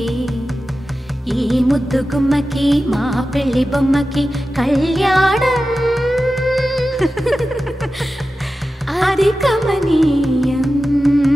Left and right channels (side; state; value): both; normal; correlation 0.93